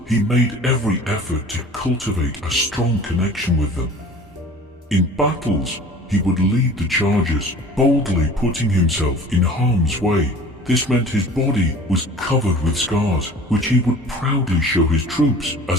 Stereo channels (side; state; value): both; normal; correlation 0.43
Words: he made every effort to cultivate a strong connection with them. In battles, he would lead the charges, boldly putting himself in harm's way. This meant his body was covered with scars, which he would proudly show his troops